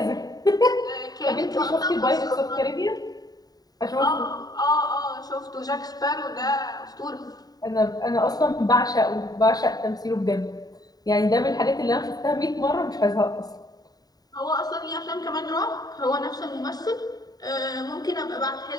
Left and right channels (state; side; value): late; right; 0.18 ms